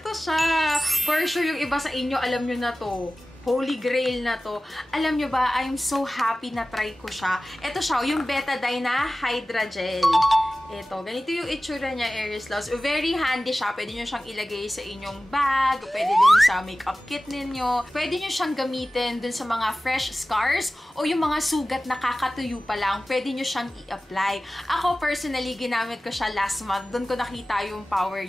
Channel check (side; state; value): both; normal; correlation 0.96